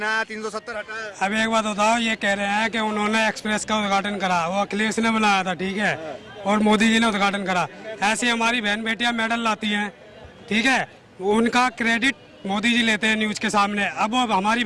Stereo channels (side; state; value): both; identical; correlation 1.00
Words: 370 हटा। अब एक बात बताओ, ये कह रहे हैं कि उन्होंने एक्सप्रेस का उद्घाटन करा, वो अखिलेश ने बनाया था, ठीक है, और मोदी जी ने उद्घाटन करा। ऐसी हमारी बहन बेटियां मेडल लाती हैं, ठीक है, उनका क्रेडिट मोदी जी लेते हैं न्यूज के सामने। अब वो हमारी